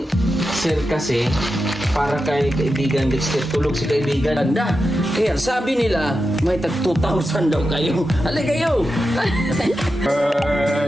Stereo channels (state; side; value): normal; both; correlation 0.90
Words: Sir kasi para kay kaibigan Dexter, tulog si kaibigan anda. Kaya sabi nila may tag 2,000 daw kayo. Halika kayo.